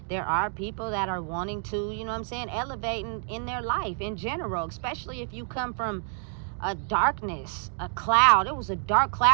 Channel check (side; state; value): left; silent; 58 dB below the other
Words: There are people that are wanting to, you know what I'm saying, elevate in their life in general, especially if you come from a darkness, a cloud. It was a dark